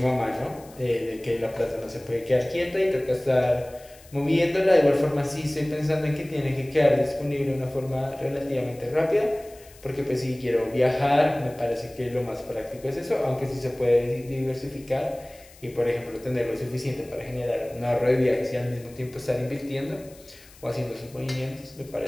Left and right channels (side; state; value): left; noise; hiss, 24 dB below the sound